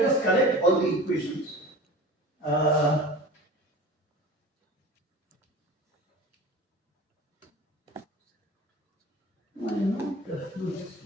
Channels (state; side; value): normal; both; correlation 0.37